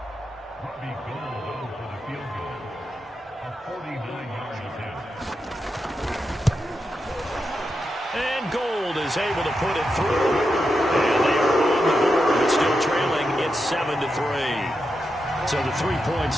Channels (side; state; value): both; normal; correlation 0.87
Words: Able to put it through, and they are on the board. It's still trailing. It's 7-3. So the 3 points